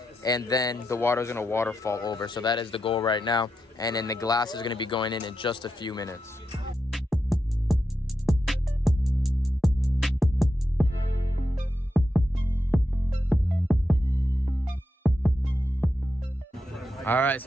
And then the water is gonna waterfall over. So that is the goal right now. And then the glass is gonna be going in just a few minutes. All right,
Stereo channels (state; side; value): normal; both; correlation 0.86